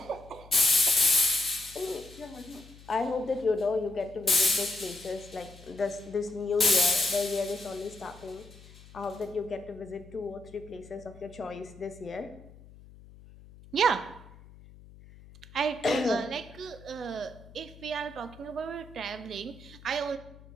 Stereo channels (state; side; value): noise; left; hum, 20 dB below the sound